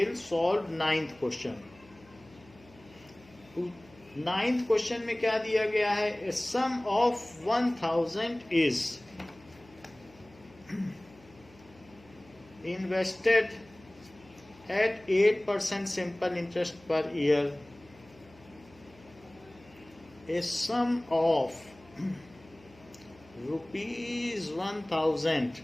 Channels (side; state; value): left; noise; hum, 25 dB below the sound